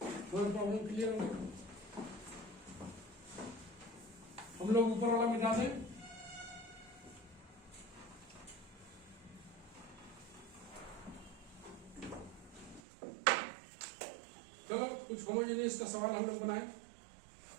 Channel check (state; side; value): drops out; left; at 12.8 s